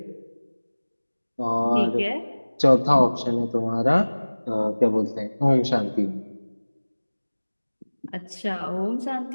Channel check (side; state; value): both; inverted; correlation -1.00